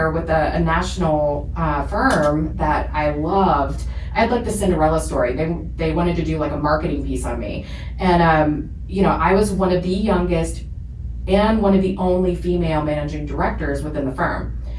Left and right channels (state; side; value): identical; both; correlation 1.00